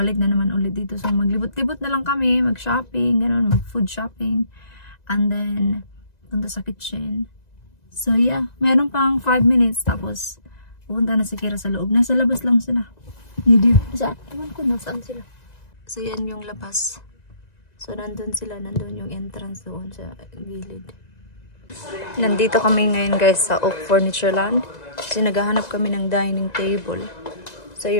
na naman ulit dito. So, maglibot-libot na lang kami, mag-shopping, ganun, mag-food shopping. And then, punta sa kitchen. So, yeah, meron pang 5 minutes tapos, pupunta na si Kira sa loob. Nasa labas lang sila. Hindi. Saan? Ewan ko, nasaan sila. So, yan yung labas. So, nandun sila. Nandun yung entrance doon sa gilid. Nandito kami ngayon, guys, sa Oak Furniture Land. Kasi naghahanap kami ng dining table. So,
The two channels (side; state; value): right; late; 1.9 ms